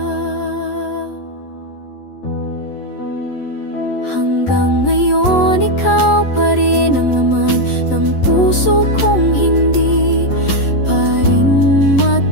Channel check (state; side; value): late; right; 11 ms